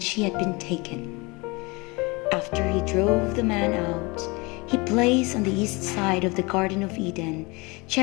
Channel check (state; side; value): quieter; right; 26.3 dB